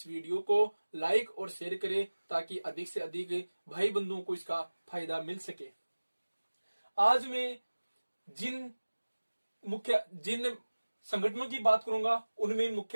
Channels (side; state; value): both; inverted; correlation -1.00